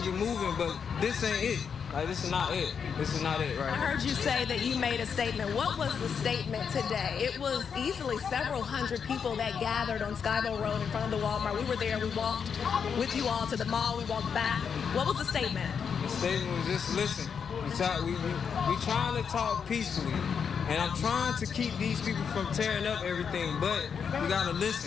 it moving, but this ain't it. Like, this is not it. This is not it, right? I heard you say that you made a statement. What was the statement today? It was easily several hundred people that gathered on Skybo Road in front of the Walmart. We were there. We walked with you all to the mall. We walked back. What was the statement? The statement was just listen. We trying to talk peacefully, and I'm trying to keep these people from tearing up everything, but we gotta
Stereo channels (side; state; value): right; quieter; 6.7 dB